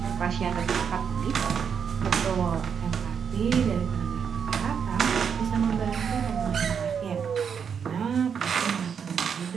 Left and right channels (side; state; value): left; quieter; 7.0 dB